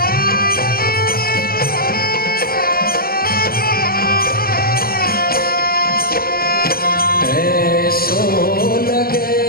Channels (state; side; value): late; right; 0.44 ms